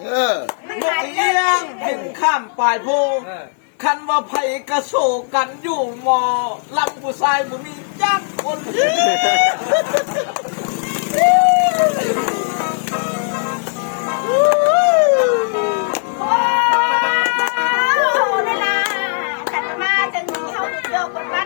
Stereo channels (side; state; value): right; silent; 59 dB below the other